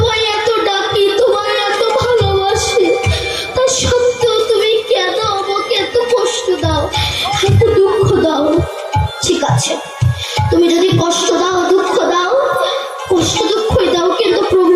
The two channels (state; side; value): identical; both; correlation 1.00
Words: এত ডাকি, তোমায় এত ভালোবাসি, তা সত্ত্বেও তুমি কেন আমাকে এত কষ্ট দাও, এত দুঃখ দাও? ঠিক আছে, তুমি যদি কষ্ট দাও, দুঃখ দাও, কষ্ট দুঃখই দাও, কিন্তু